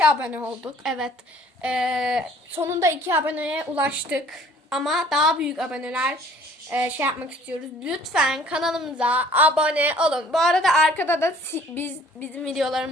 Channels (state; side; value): normal; both; correlation 0.55